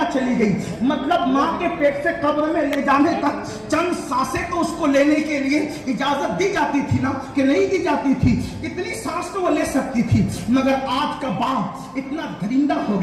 چلی گئی, مطلب ماں کے پیٹ سے قبر میں لے جانے تک چند سانسیں تو اس کو لینے کے لیے اجازت دی جاتی تھی نا, کہ نہیں دی جاتی تھی؟ اتنی سانس تو وہ لے سکتی تھی. مگر آج کا باپ اتنا درندہ ہو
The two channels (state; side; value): identical; both; correlation 1.00